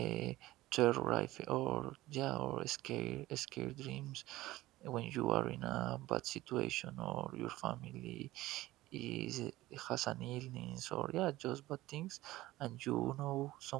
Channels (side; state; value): left; quieter; 17.2 dB